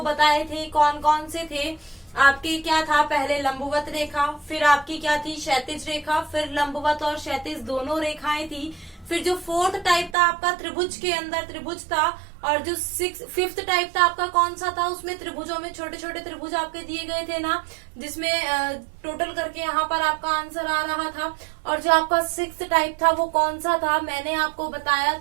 बताए थे, कौन कौन से थे। आपकी क्या था, पहले लंबवत रेखा, फिर आपकी क्या थी क्षैतिज रेखा, फिर लंबवत और क्षैतिज दोनों रेखाएं थी। फिर जो 4th टाइप था आपका त्रिभुज के अंदर त्रिभुज था, और जो 5th टाइप था आपका कौन सा था, उसमें त्रिभुजों में छोटे छोटे त्रिभुज आपके दिए गए थे ना, जिसमें टोटल करके यहाँ पर आपका आंसर आ रहा था। और जो आपका 6th टाइप था वो कौन सा था, मैंने आपको बताया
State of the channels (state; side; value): drops out; left; at 10.2 s